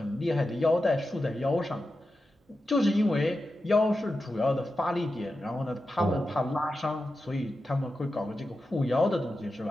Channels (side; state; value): both; normal; correlation 0.91